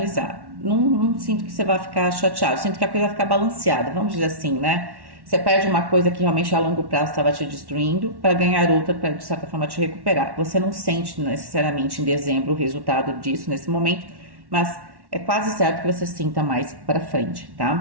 Não sinto que você vai ficar chateado, sinto que a coisa vai ficar balanceada, vamos dizer assim, né? Você perde uma coisa que realmente a longo prazo estava te destruindo para ganhar outra, para de certa forma te recuperar. Você não sente necessariamente em dezembro o resultado disso nesse momento, mas é quase certo que você sinta mais para frente,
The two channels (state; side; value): late; left; 1.1 ms